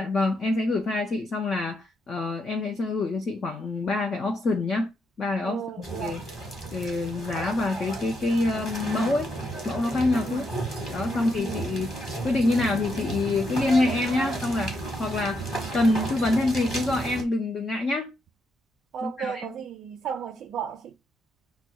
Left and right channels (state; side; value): normal; both; correlation 0.80